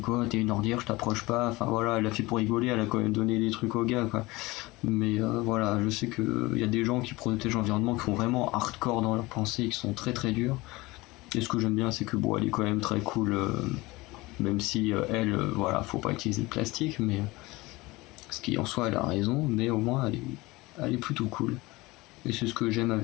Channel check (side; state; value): right; quieter; 21.5 dB